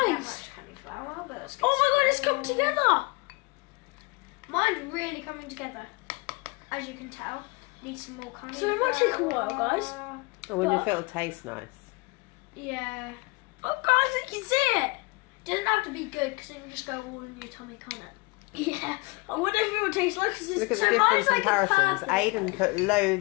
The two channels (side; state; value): right; quieter; 26.4 dB